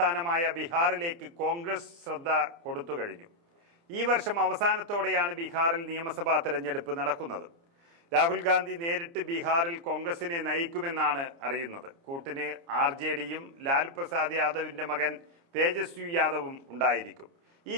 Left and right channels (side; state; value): left; late; 29 ms